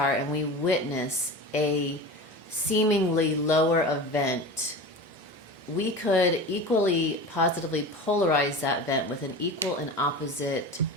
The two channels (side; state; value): both; normal; correlation 0.32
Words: and we witness a seemingly lower event, we could equally positively polarize that event with an equal and opposite